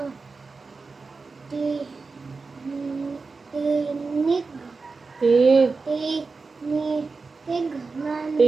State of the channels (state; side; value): quieter; left; 4.2 dB